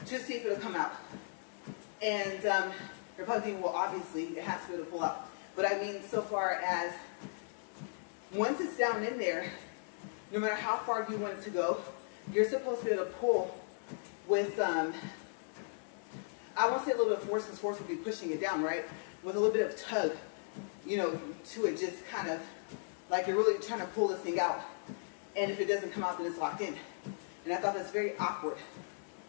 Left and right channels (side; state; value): right; silent; 53 dB below the other